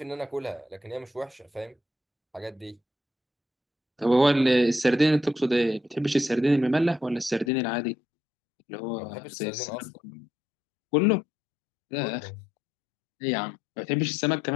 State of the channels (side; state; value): right; drops out; at 7.5 s